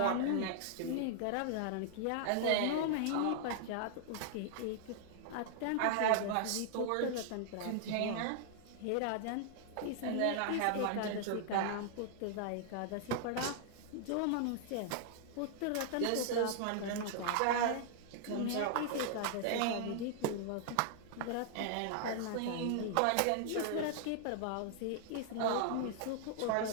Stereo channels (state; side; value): different; both; correlation -0.01